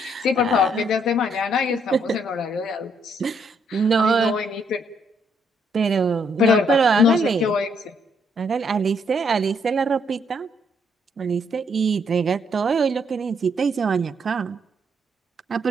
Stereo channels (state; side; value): normal; both; correlation 0.72